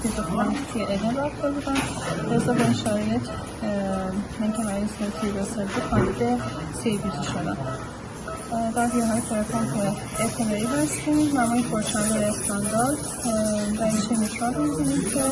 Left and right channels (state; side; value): identical; both; correlation 1.00